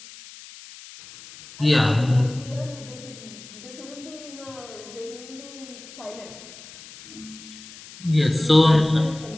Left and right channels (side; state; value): left; noise; hiss, 18 dB below the sound